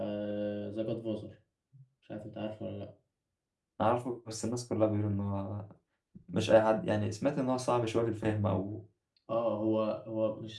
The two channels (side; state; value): both; identical; correlation 1.00